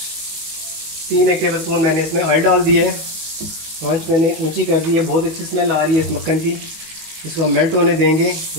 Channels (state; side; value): late; left; 19 ms